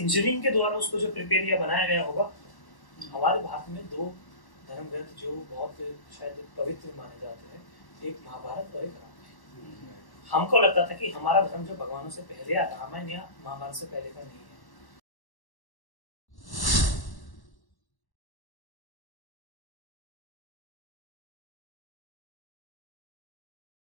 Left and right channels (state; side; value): late; right; 1.1 ms